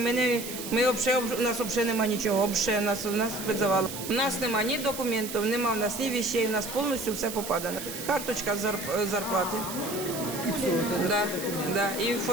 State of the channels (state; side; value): noise; right; hiss, 9 dB below the sound